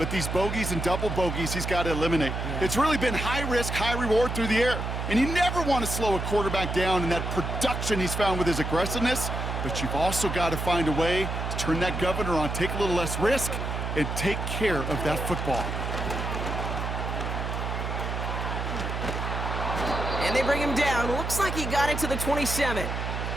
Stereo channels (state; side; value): noise; right; hum, 3 dB below the sound